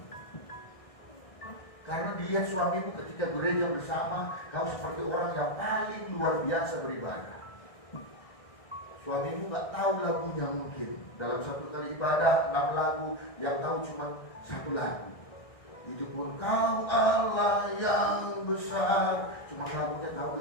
Karena dia suamimu ketika gereja bersama, kau seperti orang yang paling luar biasa beribadah. Suamimu gak tahu lagunya mungkin. Dalam satu kali ibadah 6 lagu, yang tahu cuma 1 lagu. Itu pun kau Allah yang besar, cuma lagunya tahu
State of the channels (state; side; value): late; right; 1.6 ms